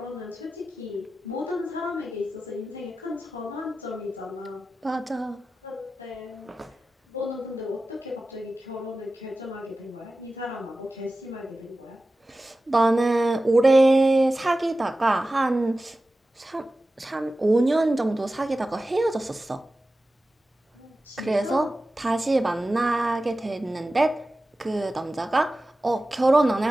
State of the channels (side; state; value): both; normal; correlation 0.95